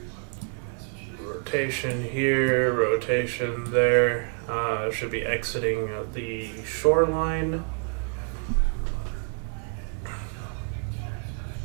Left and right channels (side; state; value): left; quieter; 38.5 dB